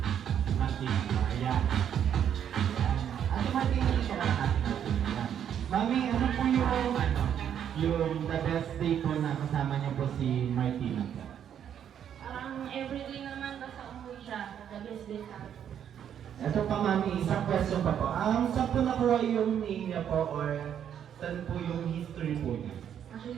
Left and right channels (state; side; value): quieter; left; 9.2 dB